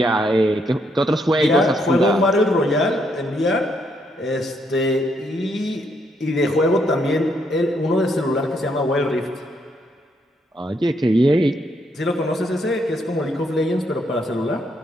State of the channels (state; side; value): normal; both; correlation 0.74